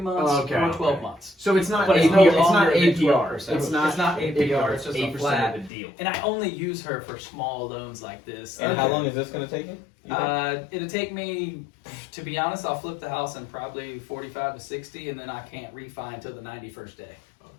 Okay, or 12 okay. months. So it's not But it's APR. no It's not longer than APR. 12%. It's not APR. It's just a 8% flat. of the deal. And I only use her for small loans like this. And how long is this going to take you? It'll take me, to be honest, I'll flip the house in probably 45 to 60, and then I can't refi until the 91st day.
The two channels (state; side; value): drops out; right; at 5.7 s